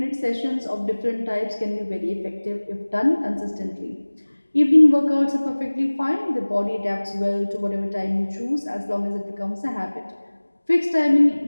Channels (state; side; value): inverted; both; correlation -1.00